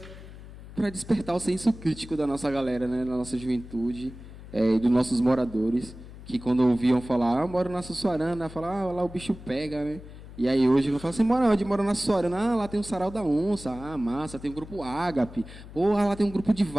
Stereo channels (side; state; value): left; noise; hum, 16 dB below the sound